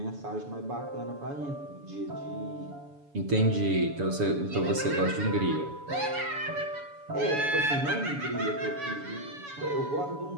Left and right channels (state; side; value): late; left; 7.0 ms